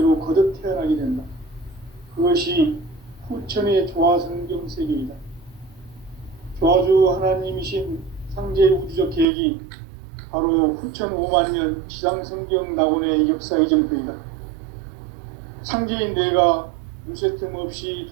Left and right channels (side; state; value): left; drops out; at 9.2 s